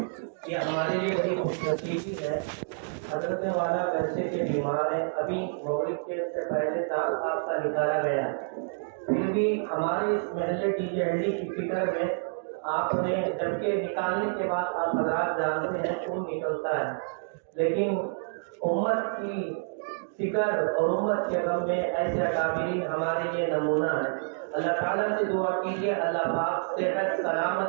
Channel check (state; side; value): silent; left; digital silence